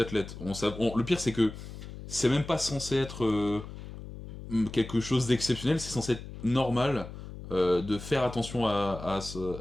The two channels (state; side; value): noise; left; hum, 12 dB below the sound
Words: Le pire, c'est que c'est même pas censé être quelque chose d'exceptionnel, c'est censé être normal de faire attention à